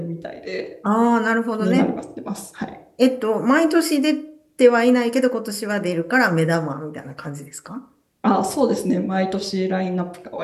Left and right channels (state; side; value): identical; both; correlation 1.00